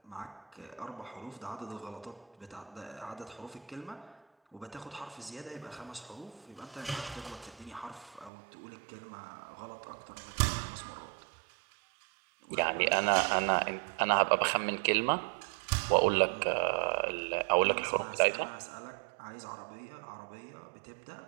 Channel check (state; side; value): drops out; left; at 8.3 s